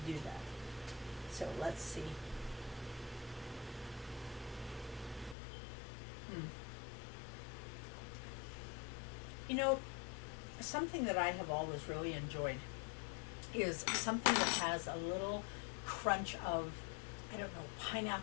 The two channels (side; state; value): right; drops out; at 5.4 s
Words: do that. So let's see. You know, something that I have always really enjoyed is something that has a little crunch of, I don't know,